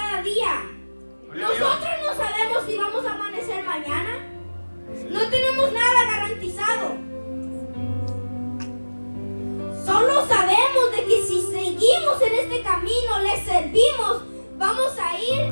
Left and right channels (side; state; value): both; inverted; correlation -1.00